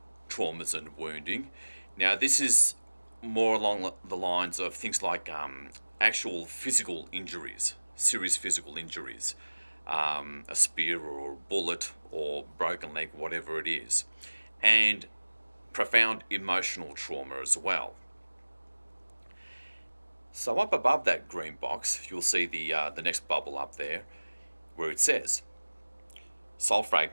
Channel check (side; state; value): both; inverted; correlation -1.00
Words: traumas and wounding. Now, this is more along the lines of things like actual physical injuries, serious physical injuries, a spear or a bullet or broken leg, whatever it is, and profound emotional trauma as well. So up above that green box, you'll see the next bubble up there, where it says soul